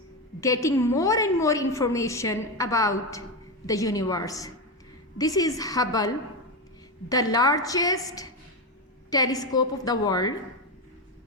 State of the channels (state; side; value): normal; both; correlation 0.13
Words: getting more and more information about the universe. This is Hubble, the largest telescope of the world.